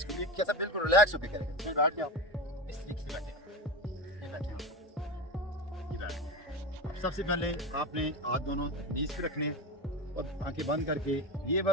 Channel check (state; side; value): normal; both; correlation 0.22